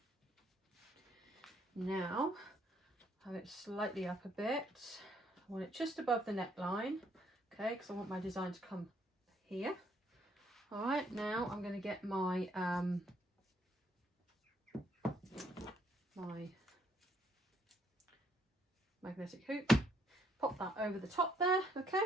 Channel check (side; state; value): both; normal; correlation 0.69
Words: now have it slightly up a bit. I want it just above the neckline, okay, because I want my design to come here. All right, now I'm going to get my my magnetic hoop, pop that over the top there, okay,